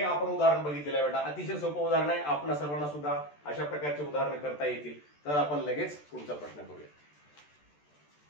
आपण उदाहरण बघितलेलं आहे बेटा. अतिशय सोपं उदाहरण आहे, आपल्या सर्वांना सुद्धा अशा प्रकारचे उदाहरण करता येतील. तर आपण लगेच पुढचा प्रश्न करूया.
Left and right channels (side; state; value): right; late; 14 ms